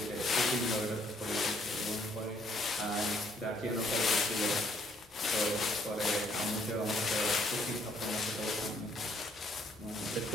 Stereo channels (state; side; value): normal; both; correlation 0.67